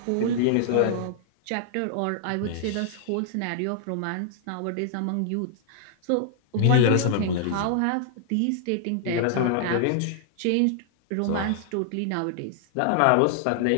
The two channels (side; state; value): both; different; correlation -0.01